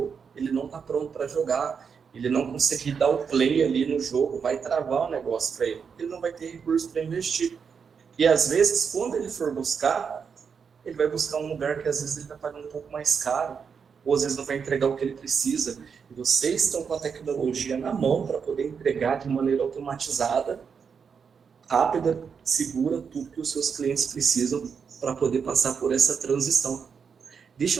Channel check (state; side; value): quieter; left; 6.3 dB